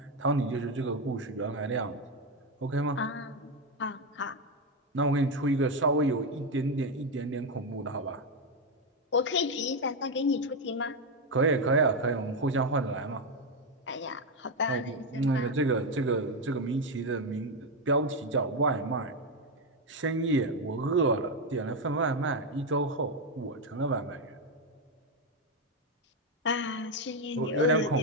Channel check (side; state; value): both; normal; correlation 0.07